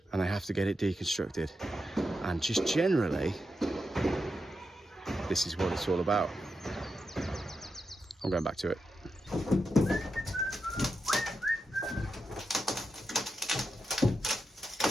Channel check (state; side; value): normal; both; correlation 0.87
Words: and they have to get it deconstructed. And just generally, this is what it's all about. I'm going back to it.